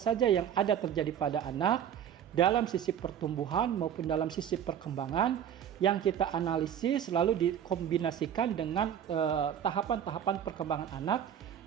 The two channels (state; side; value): quieter; left; 9.3 dB